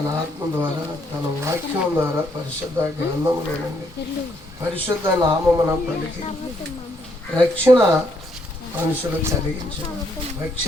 ఆత్మ ద్వారా, తన వాక్యం ద్వారా, పరిశుద్ధ గ్రంథంలో నుండి పరిశుద్ధ నామమున పలికి రక్షణ మనుషులు కలిగించారు.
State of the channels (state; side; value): normal; both; correlation 0.72